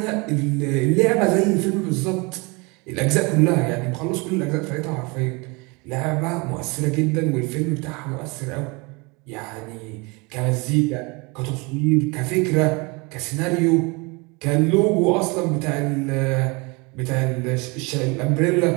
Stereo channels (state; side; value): quieter; left; 27.9 dB